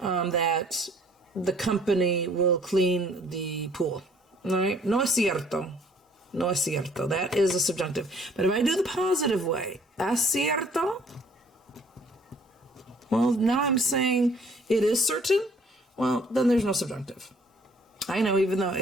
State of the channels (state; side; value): normal; both; correlation 0.59